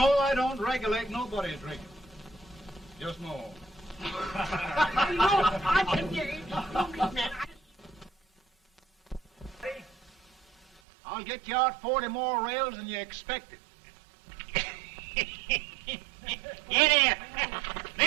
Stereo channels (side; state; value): left; drops out; at 10.8 s